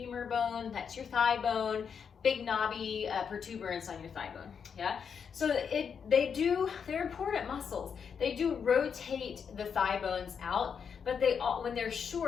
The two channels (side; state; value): right; quieter; 6.8 dB